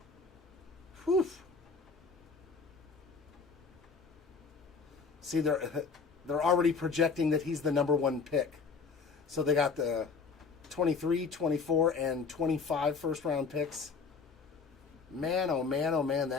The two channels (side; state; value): right; quieter; 5.1 dB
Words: Whew. See, they're already projecting that he's the #1 pick. So they got the 23, 24, and 25 first-round picks. Man, oh man,